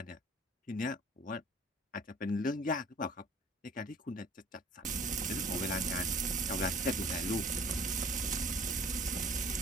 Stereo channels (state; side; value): normal; both; correlation 0.49